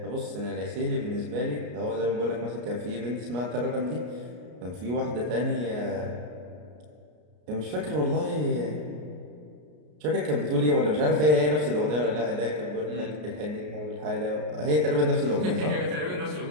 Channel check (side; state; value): left; late; 33 ms